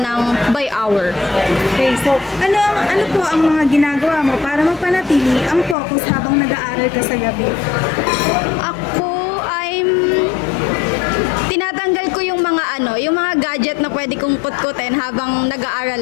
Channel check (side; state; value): right; drops out; at 5.8 s